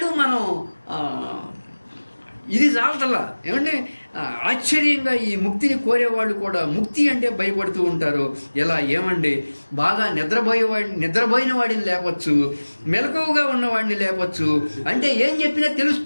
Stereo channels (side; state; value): both; inverted; correlation -1.00